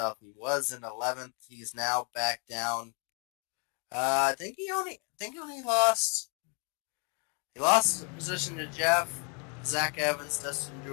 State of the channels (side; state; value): right; quieter; 34.8 dB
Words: he was in 11th, he's now back down. I think he only lost a position to Jeff. Zach Evans, Dustin